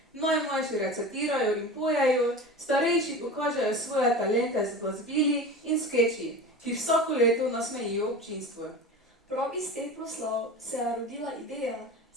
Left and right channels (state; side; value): normal; both; correlation 0.32